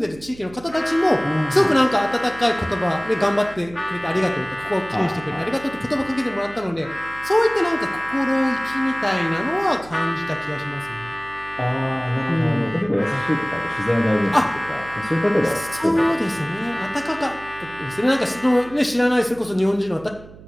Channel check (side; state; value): right; noise; hum, 19 dB below the sound